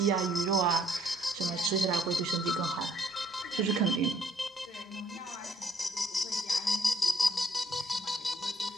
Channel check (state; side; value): normal; both; correlation 0.66